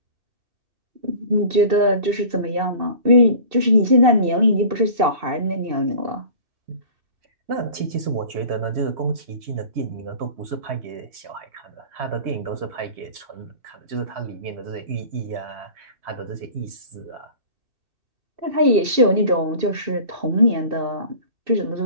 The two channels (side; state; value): left; late; 2.7 ms